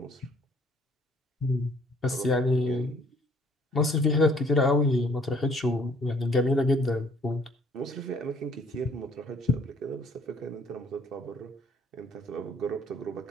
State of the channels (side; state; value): both; normal; correlation 0.60